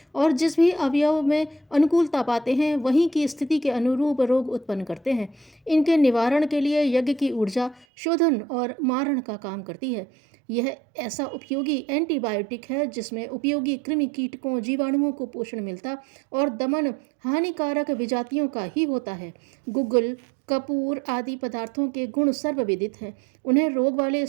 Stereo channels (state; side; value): drops out; left; at 7.9 s